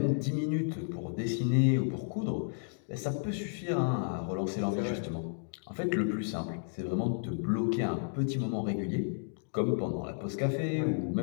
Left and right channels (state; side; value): silent; right; digital silence